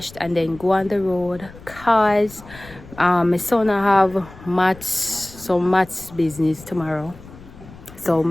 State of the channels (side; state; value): left; noise; rumble, 19 dB below the sound